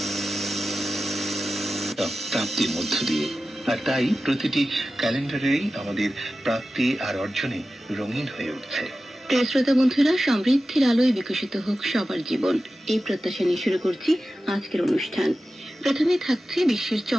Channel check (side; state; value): both; normal; correlation 0.94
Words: প্রাপ্তির মধ্য দিয়ে। আর তাই প্রতিটি ক্যালেন্ডারেই আমাদের প্রাপ্তি আর অর্জনে রঙিন হয়ে উঠছে। প্রিয় শ্রোতা বন্ধুরা, সমৃদ্ধির আলোয় বিকশিত হোক সবার জীবন, এই প্রত্যাশা নিয়ে শুরু করছি আজকের অনুষ্ঠান। প্রথমে থাকছে বিশ্বের